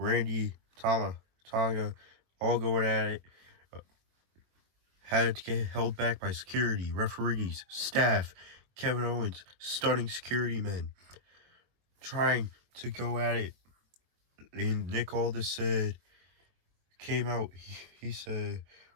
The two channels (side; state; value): left; late; 22 ms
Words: Tama, Tonga, all going at it. Had to get held back by security, referees, staff. Kevin Owens, stunning security men, trying to go at it. And Nick Aldis came out, he said,